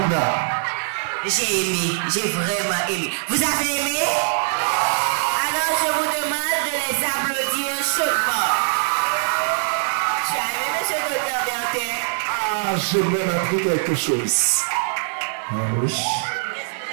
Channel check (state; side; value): silent; left; digital silence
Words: J'ai aimé, j'ai vraiment aimé. Vous avez aimé? Alors je vous demande de les applaudir chaudement. Tu as aimé, M. Gauthier Bertin? Ah, j'ai même appris quelque chose. Ah oui.